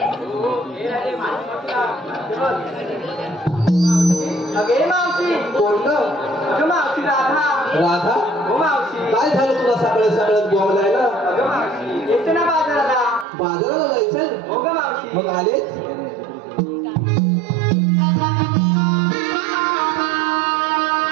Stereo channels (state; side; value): drops out; left; at 13.2 s